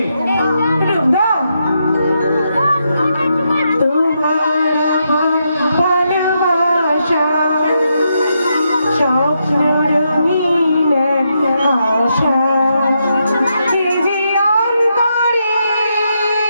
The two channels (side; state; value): both; inverted; correlation -0.81